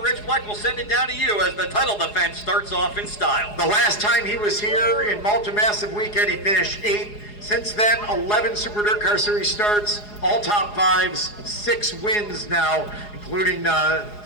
Bleck will send it down to you as the title defense starts off in style. The last time he was here in Malta Massive Weekend, he finished 8th. Since then, 11 Super DIRTcar Series starts, all top fives, 6 wins now, including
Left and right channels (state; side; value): late; right; 4.8 ms